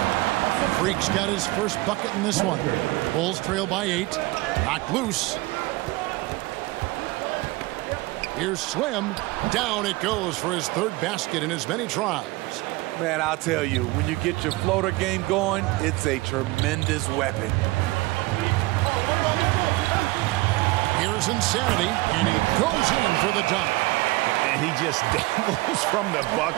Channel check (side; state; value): left; quieter; 21.4 dB